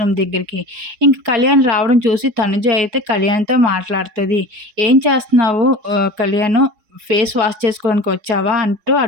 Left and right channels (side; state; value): left; late; 4.7 ms